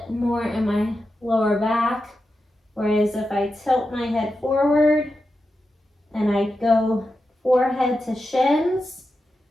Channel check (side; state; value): both; normal; correlation 0.89